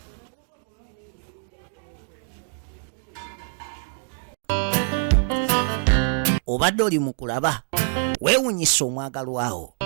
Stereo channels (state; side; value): silent; left; digital silence